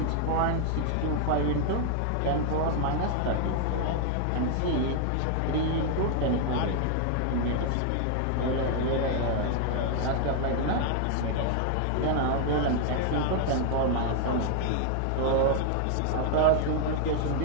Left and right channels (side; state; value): both; different; correlation 0.00